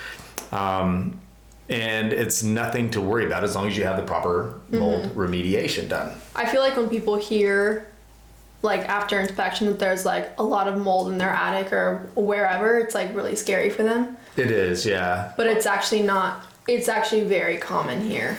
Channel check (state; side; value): identical; both; correlation 1.00